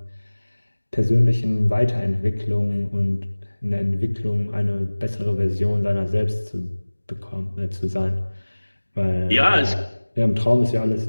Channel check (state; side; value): inverted; both; correlation -1.00